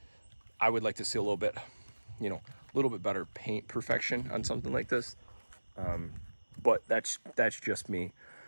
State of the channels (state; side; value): inverted; both; correlation -1.00